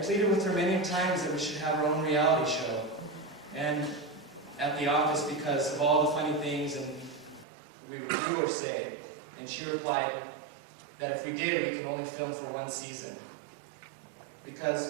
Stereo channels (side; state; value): left; drops out; at 7.5 s